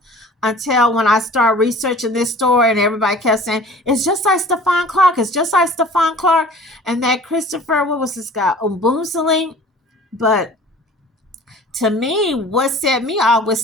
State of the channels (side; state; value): both; normal; correlation 0.46